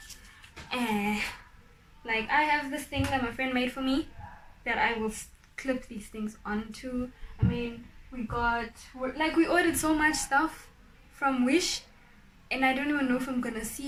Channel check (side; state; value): both; identical; correlation 1.00